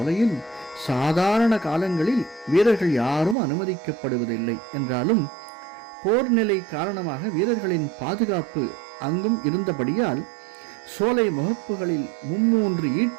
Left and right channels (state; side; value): drops out; left; at 3.4 s